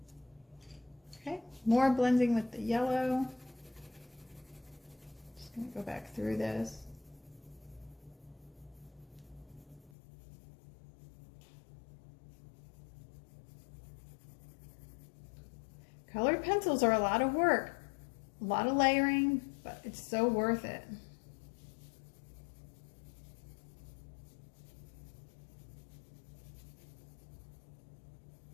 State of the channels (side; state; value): right; drops out; at 9.9 s